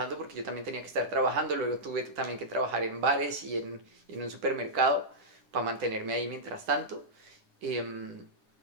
porque yo también tenía que estar trabajando, luego tuve también que trabajar en bares y en un supermercado para mantenerme ahí mientras tanto. Em,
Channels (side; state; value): left; late; 10 ms